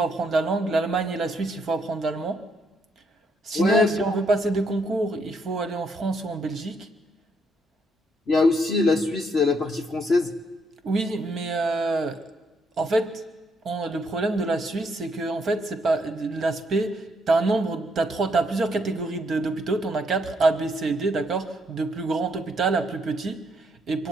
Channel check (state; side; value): normal; both; correlation 0.73